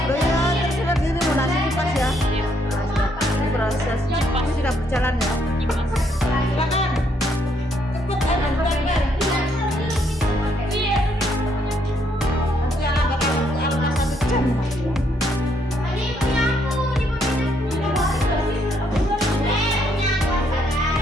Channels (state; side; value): normal; both; correlation 0.72